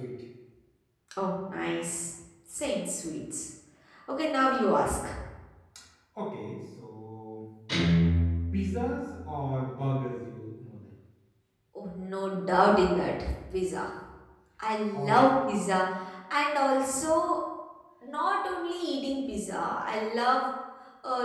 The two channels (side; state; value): both; identical; correlation 1.00